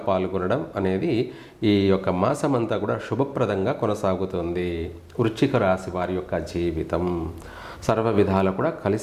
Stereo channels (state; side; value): identical; both; correlation 1.00